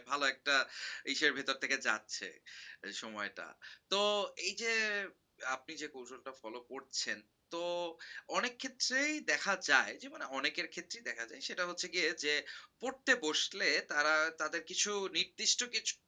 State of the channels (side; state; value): both; identical; correlation 1.00